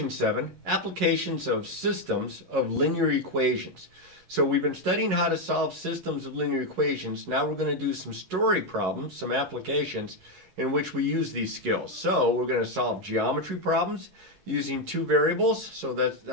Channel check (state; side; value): late; left; 11 ms